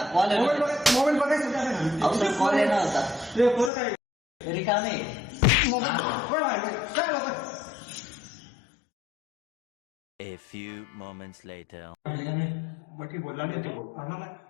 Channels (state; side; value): drops out; right; at 3.7 s